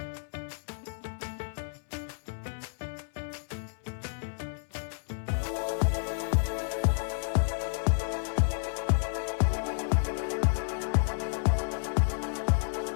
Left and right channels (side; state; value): right; silent; 57 dB below the other